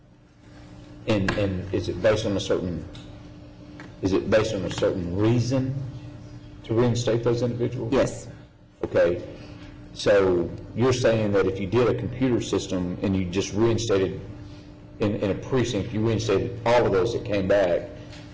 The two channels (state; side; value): identical; both; correlation 1.00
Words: And is it based on a certain reason to reinstate those individuals? Yes. Okay, so you're saying that if you did a computer system and you just reinstated, in a precinct, you reinstated all of those that came back,